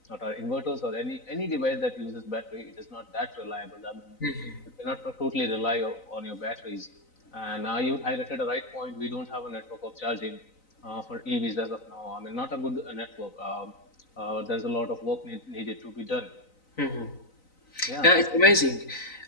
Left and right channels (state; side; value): late; right; 3.9 ms